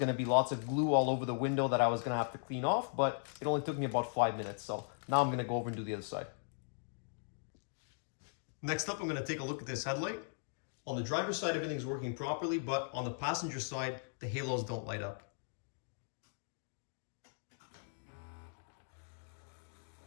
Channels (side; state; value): right; silent; digital silence